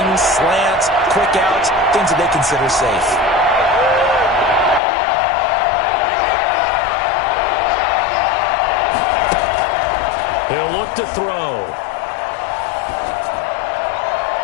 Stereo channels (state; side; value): drops out; right; at 4.8 s